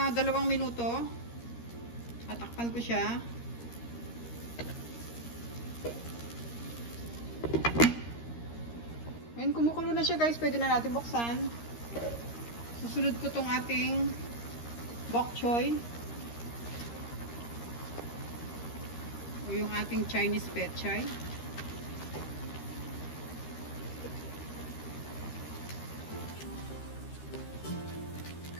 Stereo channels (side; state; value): right; late; 13 ms